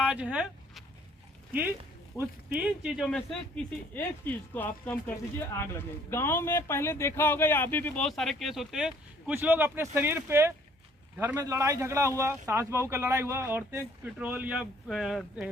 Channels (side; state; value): both; normal; correlation 0.60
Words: है कि उस 3 चीजों में से किसी एक चीज को आप कम कर दीजिए, आग लगेगी। गांव में पहले देखा होगा या अभी भी बहुत सारे केस होते हैं, कुछ लोग अपने शरीर पे, घर में लड़ाई झगड़ा हुआ, सास बहू का लड़ाई हुआ, औरतें पेट्रोल या